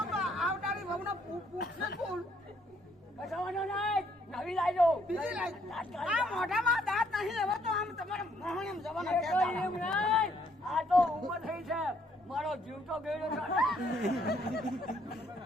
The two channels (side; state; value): both; normal; correlation 0.68